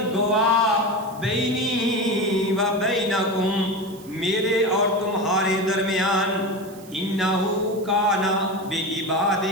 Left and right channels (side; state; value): right; noise; hiss, 22 dB below the sound